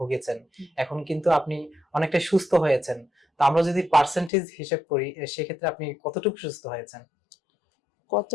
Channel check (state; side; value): drops out; right; at 4.3 s